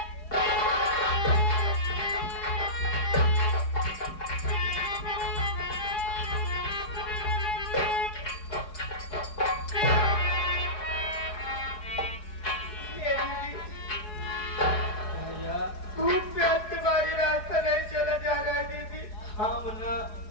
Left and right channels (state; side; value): late; right; 4.8 ms